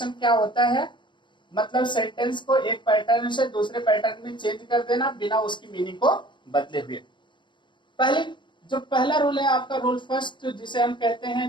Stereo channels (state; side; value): late; right; 0.23 ms